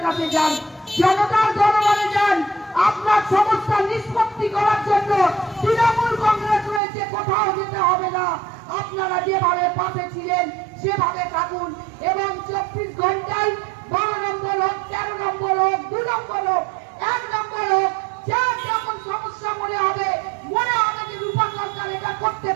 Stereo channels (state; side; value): drops out; left; at 6.8 s